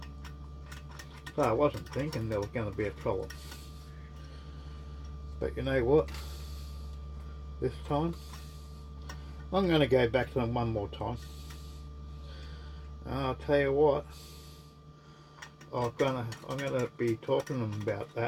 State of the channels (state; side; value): identical; both; correlation 1.00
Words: So I wasn't thinking there was going to be a problem, but you know what, this time I'm going to go back to them one more time, and I'll tell you what, I'm gonna be talking to them about